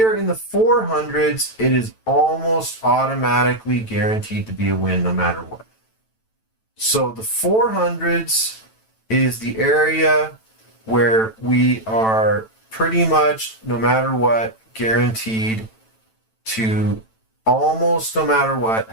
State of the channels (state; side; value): late; right; 9.0 ms